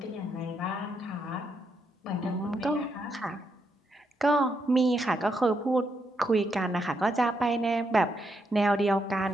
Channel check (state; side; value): normal; both; correlation 0.79